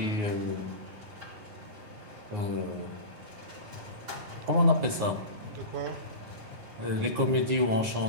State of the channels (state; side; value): late; left; 9.5 ms